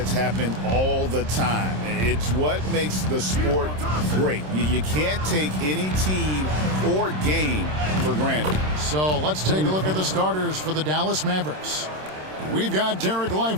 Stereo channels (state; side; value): late; left; 26 ms